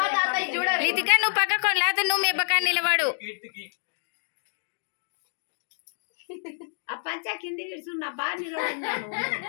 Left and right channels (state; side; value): silent; right; digital silence